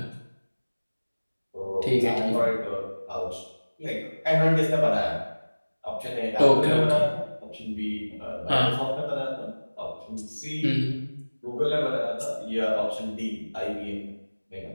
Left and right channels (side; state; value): both; inverted; correlation -1.00